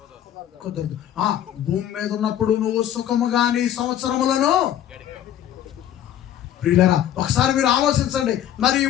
కుదరదు. భూమి మీద ఉన్నప్పుడు నువ్వు సుఖముగా నీ సంవత్సరములను. ప్రియులారా, ఒకసారి మీరు ఆలోచించండి. మరి ఈ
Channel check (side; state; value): right; quieter; 11.0 dB